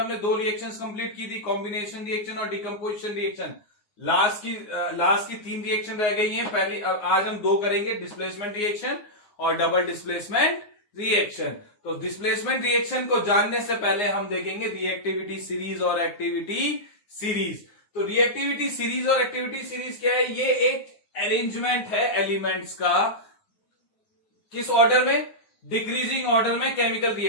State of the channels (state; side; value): late; right; 9.7 ms